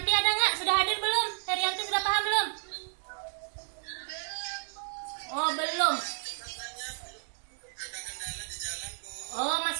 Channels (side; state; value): left; silent; 57 dB below the other